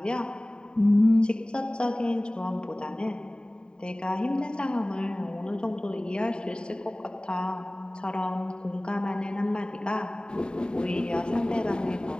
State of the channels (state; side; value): late; right; 0.048 ms